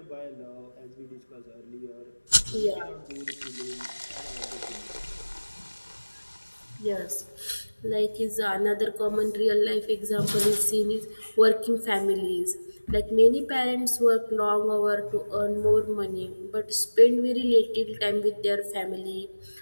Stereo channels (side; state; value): both; inverted; correlation -1.00